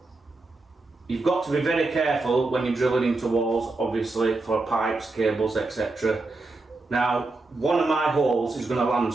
you've got to be very careful when you're drilling into walls, obviously, for pipes, cables, etc. Now, one of my holes is going to land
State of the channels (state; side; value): quieter; left; 3.3 dB